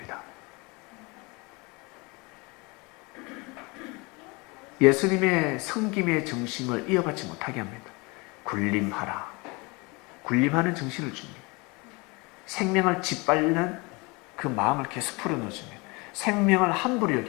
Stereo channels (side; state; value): right; quieter; 27.0 dB